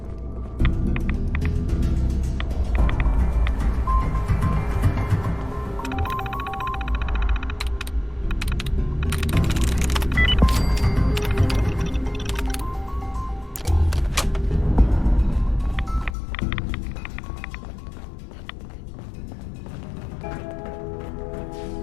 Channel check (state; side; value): drops out; right; at 16.2 s